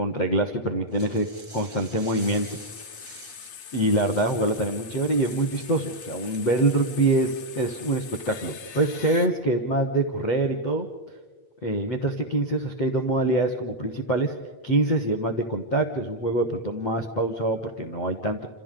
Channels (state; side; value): late; right; 8.6 ms